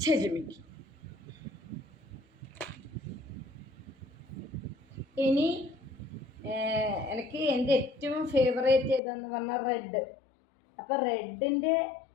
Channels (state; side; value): drops out; right; at 9.0 s